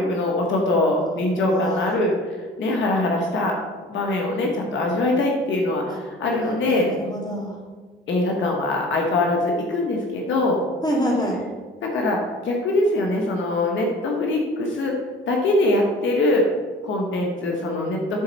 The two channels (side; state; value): both; normal; correlation 0.43